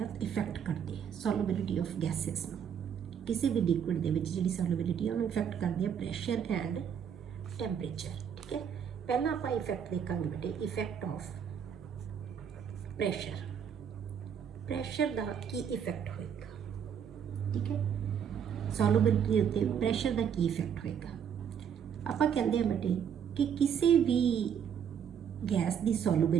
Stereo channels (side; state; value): left; quieter; 8.0 dB